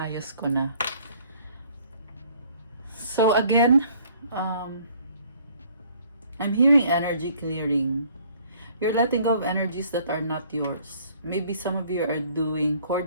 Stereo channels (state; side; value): inverted; both; correlation -0.58